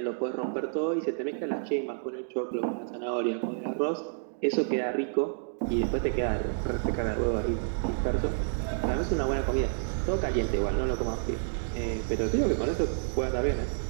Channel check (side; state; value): left; silent; digital silence